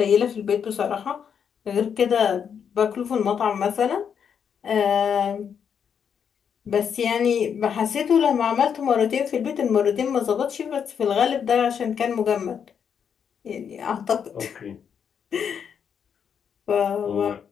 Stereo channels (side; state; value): right; quieter; 7.5 dB